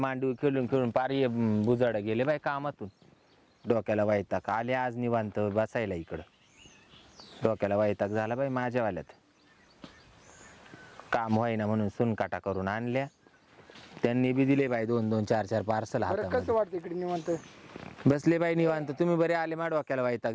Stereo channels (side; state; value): both; identical; correlation 1.00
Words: खेळून खेळून पारी बुजाड गेले बाई कामातून. डोक्याला वैताग आले आज निवांत बसायला इकडं. डोक्याला वैताग झाला बाई माझ्यावाल्यात. काम होईना म्हणून सुनकाटा करून आणल्या. त्यांनी बी दिले बाई 2-2 4-4 पार्सल बरं कसं हातामध्ये. वाटतं इकडे निवांत? बसले बाई निवांत. तुम्ही बरे आले मा डोक्याला वैताग